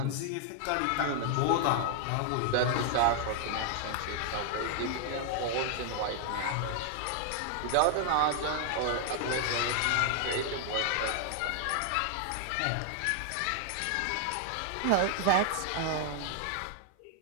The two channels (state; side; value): different; both; correlation 0.00